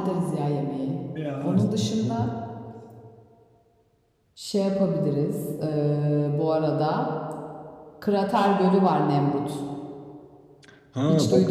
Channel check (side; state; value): both; identical; correlation 1.00